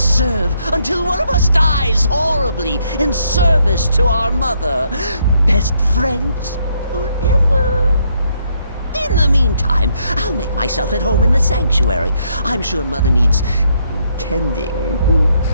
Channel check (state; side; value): inverted; both; correlation -0.73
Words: until one of us dies horribly in service to our mother. Best friends forever. In the meantime, I'll make myself at home in the sanctuary. I'm sure Mother needs tending.